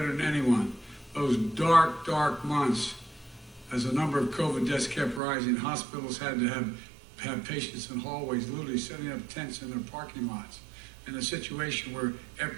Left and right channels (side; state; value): left; drops out; at 5.2 s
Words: than anyone, those dark, dark months as the number of COVID deaths kept rising. Hospitals had to have patients in hallways, literally setting up tents in their parking lots. In a situation where,